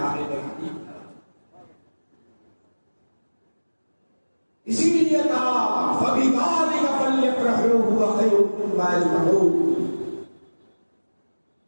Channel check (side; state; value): both; inverted; correlation -1.00